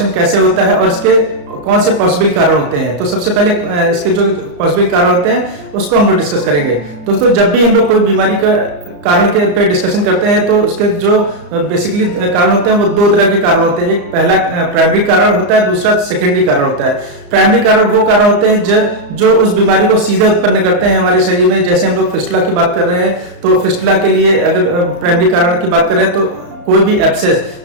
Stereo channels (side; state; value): left; late; 34 ms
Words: कैसे होता है और इसके कौन से पॉसिबल कारण होते हैं। तो सबसे पहले इसके जो पॉसिबल कारण होते हैं उसको हम लोग डिस्कस करेंगे। दोस्तों, जब भी हम लोग कोई बीमारी का कारण के पे डिस्कशन करते हैं तो उसके जो बेसिकली कारण होते हैं वो दो तरह के कारण होते हैं। एक पहला प्राइमरी कारण होता है, दूसरा सेकेंडरी कारण होता है। प्राइमरी कारण वो कारण होते हैं जो उस बीमारी को सीधे उत्पन्न करते हैं हमारे शरीर में। जैसे हम लोग फिस्टुला की बात कर रहे हैं तो फिस्टुला के लिए अगर प्राइमरी कारण की बात करें तो कोई भी एब्सेस,